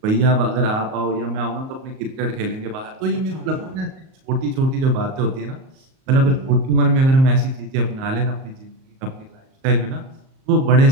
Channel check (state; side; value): late; left; 38 ms